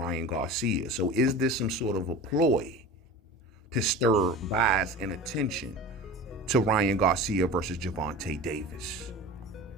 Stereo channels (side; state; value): both; normal; correlation 0.34